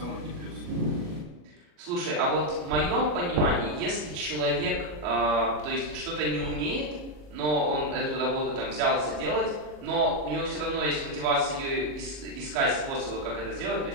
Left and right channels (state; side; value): late; left; 40 ms